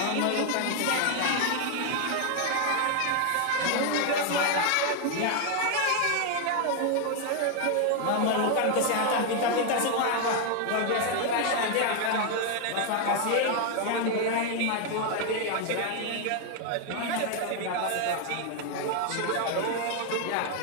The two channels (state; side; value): different; both; correlation 0.01